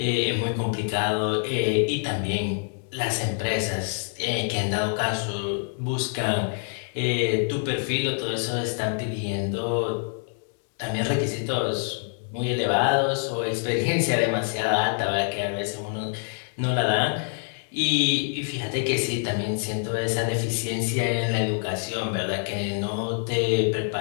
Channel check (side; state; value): right; silent; 61 dB below the other